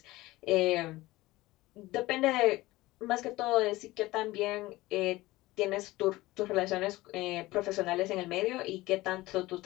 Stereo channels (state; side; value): quieter; right; 18.8 dB